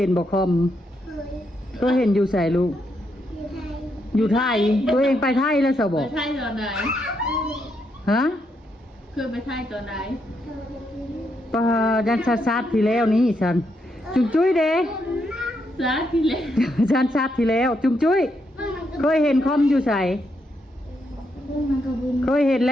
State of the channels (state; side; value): normal; both; correlation 0.79